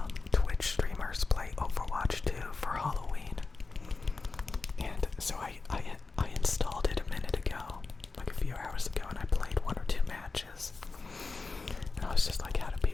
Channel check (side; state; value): right; quieter; 4.0 dB